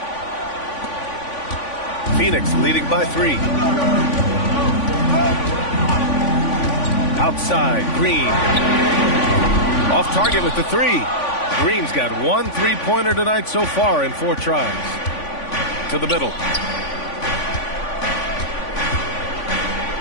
Phoenix leading by 3. Outside, Green. Off target with the 3. Green's got 1 3-pointer tonight so far in 4 tries. To the middle.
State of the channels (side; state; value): right; late; 3.5 ms